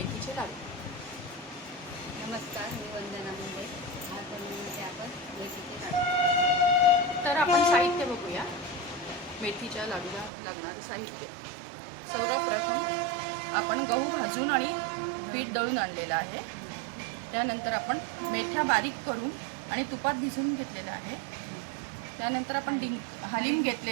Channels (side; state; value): left; drops out; at 10.3 s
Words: लाडू. नमस्कार, मी वंदना मुंडे. आज बनवण्याचे आपण मेथीचे लाडू. तर आपण साहित्य बघूया. मेथीच्या लाडूला लागणारे साहित्य. सर्वप्रथम आपण गहू भाजून आणि पीठ दळून आणलेलं आहे. त्यानंतर आपण मेथ्या बारीक करून आणि तुपात भिजवून घेतलेलं आहे. त्यानंतर आपण हलीम